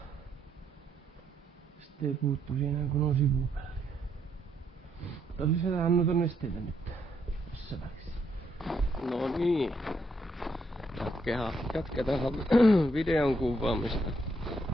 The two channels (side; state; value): both; normal; correlation 0.75